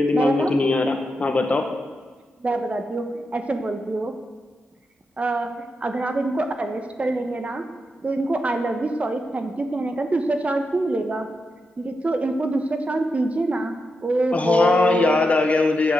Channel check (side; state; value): both; normal; correlation 0.86